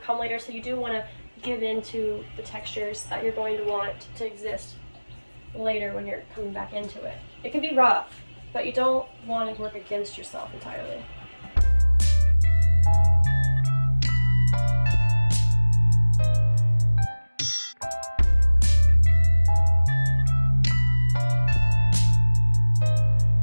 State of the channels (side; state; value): both; inverted; correlation -1.00